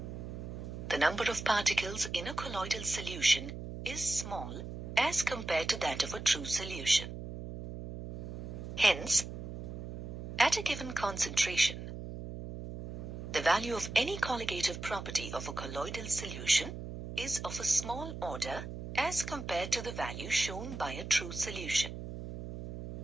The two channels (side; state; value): right; noise; hum, 8 dB below the sound